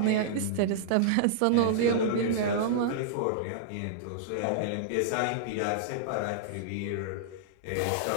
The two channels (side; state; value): both; different; correlation -0.01